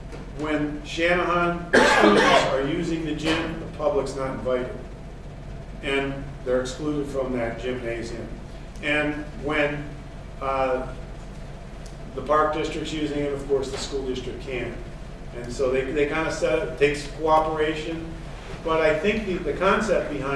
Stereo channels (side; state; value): both; identical; correlation 1.00